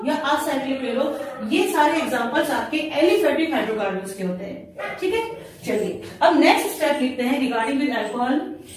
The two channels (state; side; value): identical; both; correlation 1.00